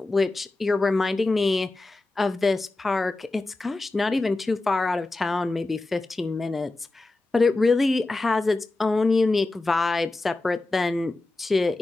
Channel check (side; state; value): right; quieter; 3.1 dB